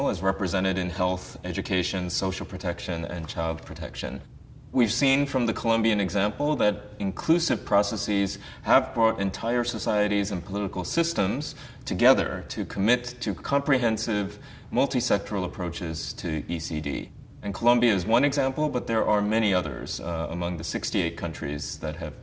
as represented in health, education, social protection, and child protection. We've seen from the Colombian example that inclusive processes have brought entire societies and political systems together to commit to comprehensive, multi-sectoral approaches to ECD. And Colombia is one example, but there are many others among the 68 countries that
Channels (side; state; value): both; identical; correlation 1.00